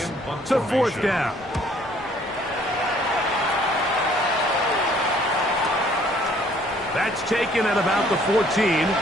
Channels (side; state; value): both; normal; correlation 0.60